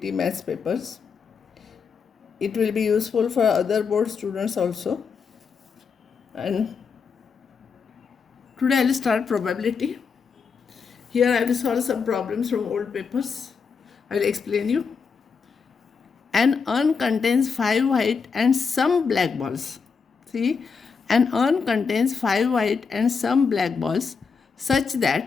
maths papers. It will be useful for other board students also. And today I will start probability. Here I will solve some problems from old papers. I will explain you. An urn contains 5 white and some black balls. See, an urn contains 5 white and some black balls such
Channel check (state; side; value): quieter; right; 5.6 dB